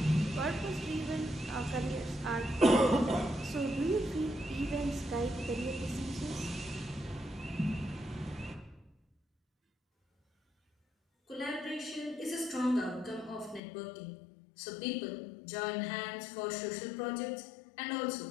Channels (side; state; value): right; drops out; at 13.6 s